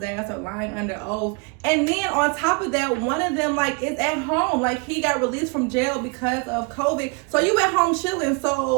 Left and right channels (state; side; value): quieter; left; 31.3 dB